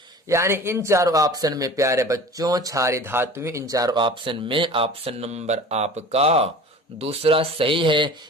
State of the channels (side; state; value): both; normal; correlation 0.40